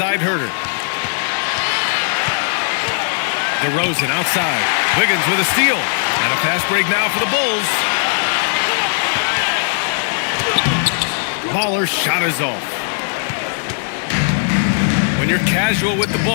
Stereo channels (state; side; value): silent; right; digital silence